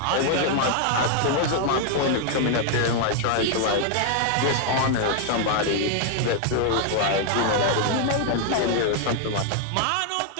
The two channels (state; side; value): different; both; correlation 0.00